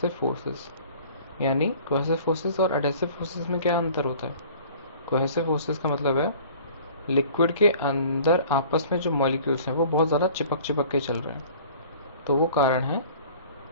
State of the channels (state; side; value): inverted; both; correlation -0.48